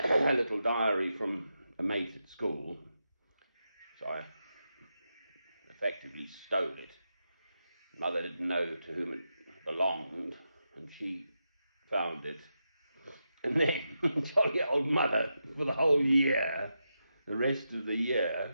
little diary from a mate at school, so I effectively stole it. Mother didn't know to whom it belonged, and she found it. And then, jolly old mother, for the whole year, the rest of the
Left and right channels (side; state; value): both; inverted; correlation -0.87